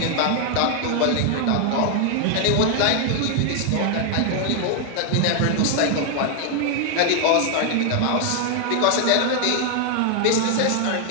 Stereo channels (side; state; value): both; different; correlation 0.00